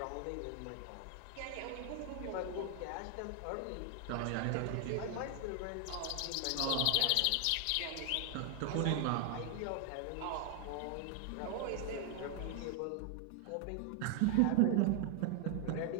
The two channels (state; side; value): different; both; correlation 0.00